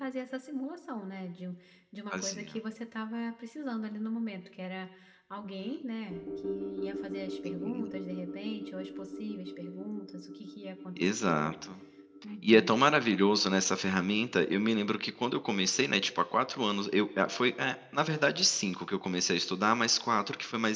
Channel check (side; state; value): both; identical; correlation 1.00